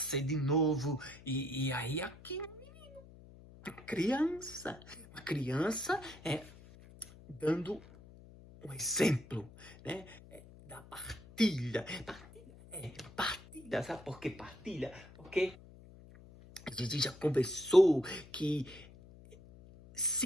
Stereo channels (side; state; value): left; noise; hum, 20 dB below the sound